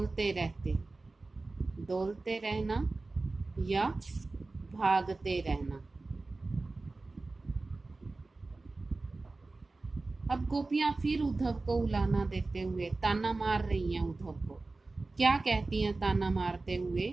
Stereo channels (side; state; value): left; quieter; 3.4 dB